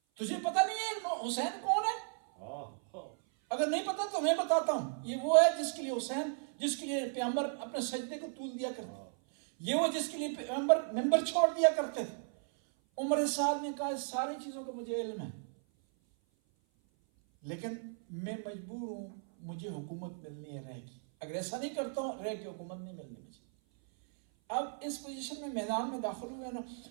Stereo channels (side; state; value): left; silent; 54 dB below the other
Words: تجھے پتہ نہیں ہے حسین کون ہے؟ اگر نہیں پتا تو میں بتاتا ہوں. یہ وہ ہے جس کے لیے حسین، جس کے لیے پیغمبر اپنے سجدے کو طول دیا کرتے، یہ وہ جس کے لیے پیغمبر ممبر چھوڑ دیا کرتے تھے. عمر سعد نے کہا اس ساری چیزوں کا مجھے علم ہے، لیکن میں مجبور ہوں، مجھے حکومت ملنی ہے رہ کی. اگر ایسا نہیں کرتا ہوں رہ کی حکومت نہیں ملنی مجھے. اب اس پوزیشن میں میدان میں داخل ہوئے نا.